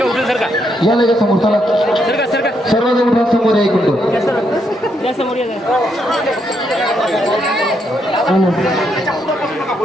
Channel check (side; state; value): both; normal; correlation 0.77